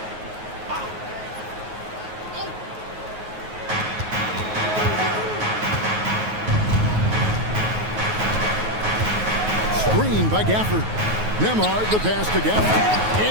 By Gafford. Nemhard, the pass to Gafford.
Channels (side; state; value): left; late; 9.4 ms